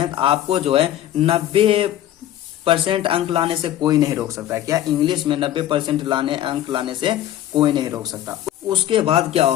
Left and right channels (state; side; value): quieter; right; 12.4 dB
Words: तो आपको जो है 90% अंक लाने से कोई नहीं रोक सकता। क्या इंग्लिश में 90% अंक लाने से कोई नहीं रोक सकता। उसके बाद क्या